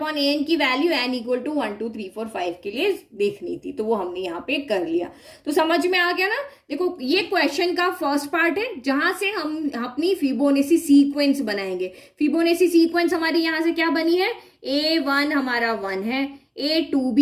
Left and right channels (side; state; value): both; identical; correlation 1.00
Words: an की वैल्यू n इक्वल टू 1, 2, 3, 4, 5 के लिए देखनी थी, तो वो हमने यहाँ पे कर लिया। तो समझ में आ गया ना। देखो ये क्वेश्चन का फर्स्ट पार्ट है, जहां से हम अपनी फिबोनाची सीक्वेंस बनाएंगे। फिबोनाची सीक्वेंस हमारी यहाँ से क्या बनी है, a1 हमारा 1 है, a2